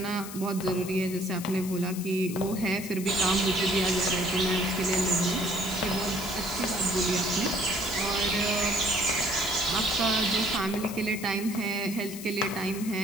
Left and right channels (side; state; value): left; noise; hiss, 12 dB below the sound